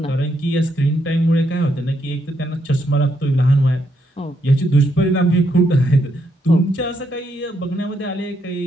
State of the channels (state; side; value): normal; both; correlation 0.77